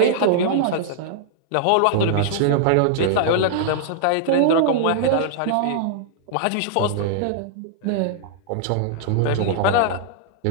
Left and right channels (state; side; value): different; both; correlation -0.01